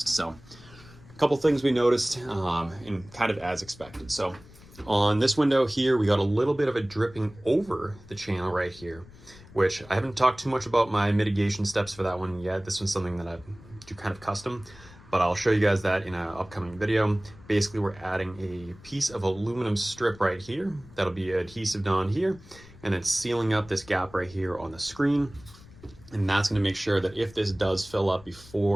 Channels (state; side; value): noise; left; rumble, 21 dB below the sound